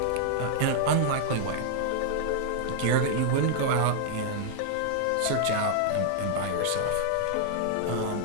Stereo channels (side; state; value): both; different; correlation -0.01